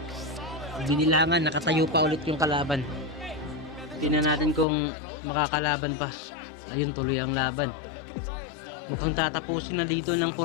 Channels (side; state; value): right; drops out; at 4.7 s